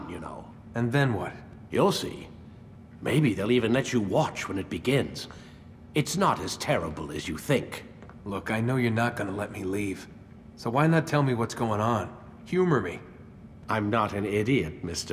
you know. And then what? You'll see. Maybe they'll even let you watch when it begins. It's not as terrible as you think. Look, I know you're not gonna let me leave. So why not tell me what's going on? Humor me. I'm not an idiot,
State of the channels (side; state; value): both; identical; correlation 1.00